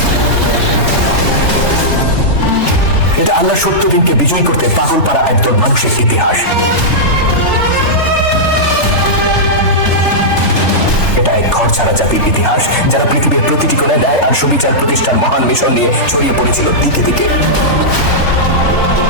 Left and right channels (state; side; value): late; right; 3.4 ms